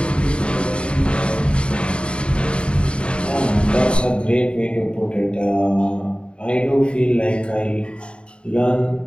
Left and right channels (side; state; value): right; late; 0.054 ms